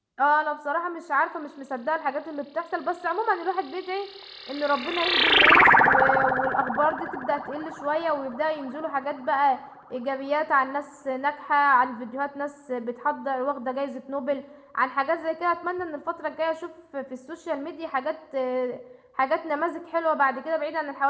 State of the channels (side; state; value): both; identical; correlation 1.00